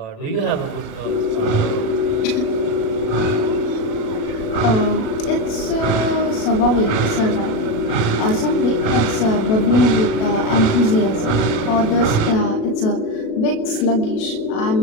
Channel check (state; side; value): late; right; 37 ms